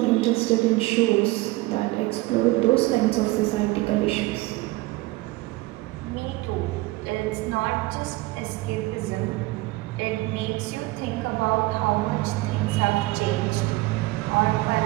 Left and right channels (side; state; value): left; quieter; 20.4 dB